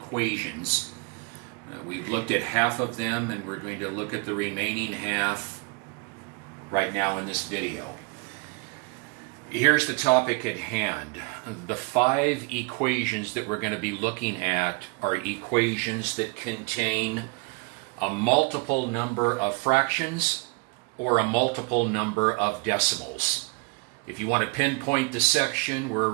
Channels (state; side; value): quieter; left; 30.7 dB